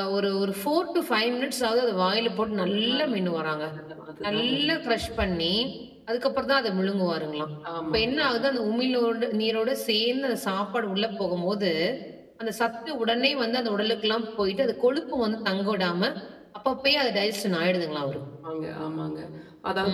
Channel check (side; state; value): both; identical; correlation 1.00